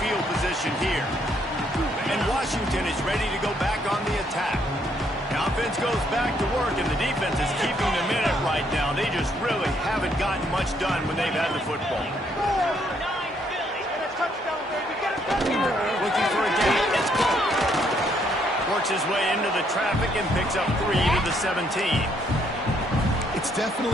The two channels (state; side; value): normal; both; correlation 0.70